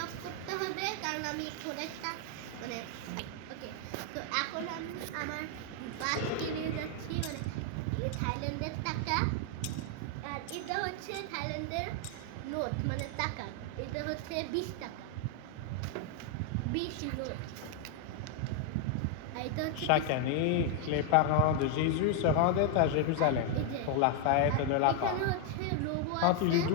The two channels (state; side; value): different; both; correlation 0.00